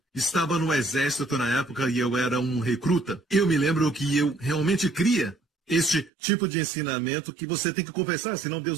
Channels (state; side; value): drops out; left; at 6.1 s